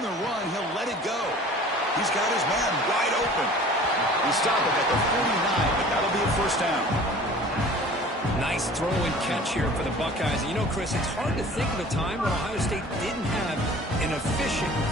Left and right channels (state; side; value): normal; both; correlation 0.45